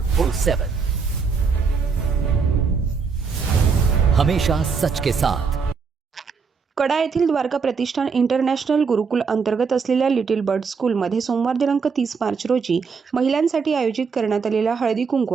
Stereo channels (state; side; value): quieter; left; 5.4 dB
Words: हमेशा सच के साथ। कडा येथील द्वारका प्रतिष्ठान इंटरनॅशनल गुरुकुल अंतर्गत असलेल्या लिटिल बर्ड स्कूलमध्ये सोमवार दिनांक 30 मार्च रोजी महिलांसाठी आयोजित करण्यात आलेला हळदी कुंकू